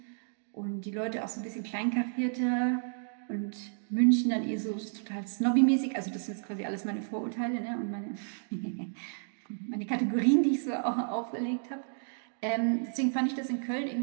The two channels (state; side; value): silent; left; digital silence